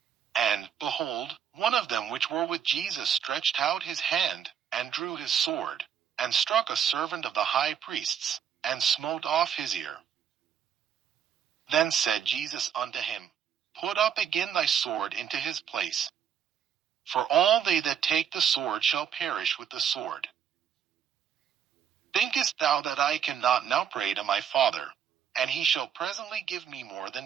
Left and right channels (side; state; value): left; quieter; 8.6 dB